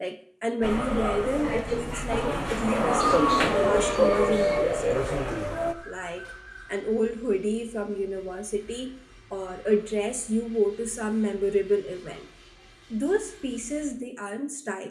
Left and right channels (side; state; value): both; identical; correlation 1.00